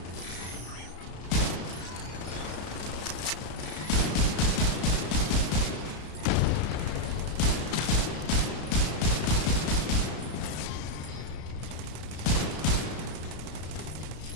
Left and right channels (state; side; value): late; right; 34 ms